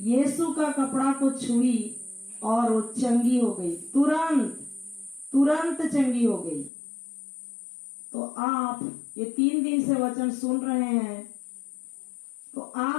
का कपड़ा को छुई और वो चंगी हो गई, तुरंत चंगी हो गई। तो आप ये 3 दिन से वचन सुन रहे हैं, तो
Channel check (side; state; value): right; drops out; at 6.7 s